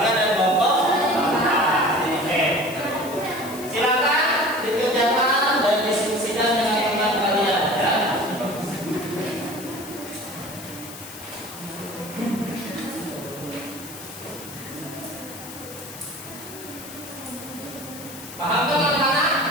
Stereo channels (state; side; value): noise; left; hiss, 14 dB below the sound